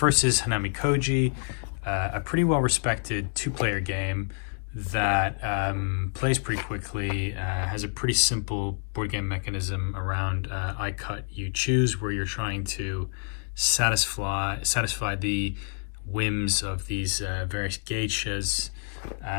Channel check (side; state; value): right; silent; 60 dB below the other